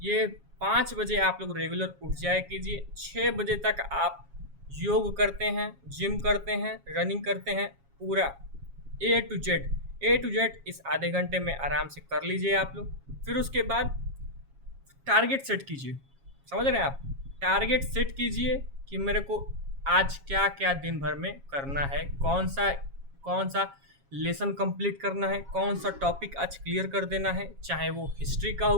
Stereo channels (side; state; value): left; late; 7.3 ms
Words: 5 बजे आप लोग रेगुलर उठ जाया कीजिए। 6 बजे तक आप योग करते हैं, जिम करते हैं, रनिंग करते हैं, पूरा ए टू जेड इस आधे घंटे में आराम से कर लीजिए आप लोग। फिर उसके बाद टारगेट सेट कीजिए। समझ रहे हैं आप? टारगेट सेट कीजिए कि मेरे को आज क्या क्या दिन भर में करना है, कौन सा लेसन कंप्लीट करना है, कौन सा टॉपिक आज क्लियर कर देना है, चाहे वो हिस्ट्री का